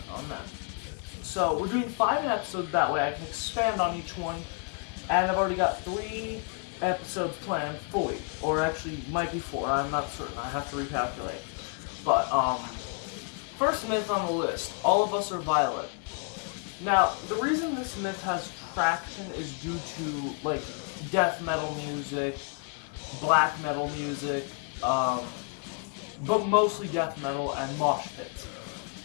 on them. So, we're doing 5 episodes, that way I can expand on each one, and I've already got 3 episodes planned fully, or actually might be 4, I'm not certain, I have to recalculate. But, first myth on the list, all of us are violent. Now, the reason this myth has traction is due to, like, death metal music, black metal music, but mostly death metal and mosh pits.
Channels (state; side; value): quieter; right; 38.4 dB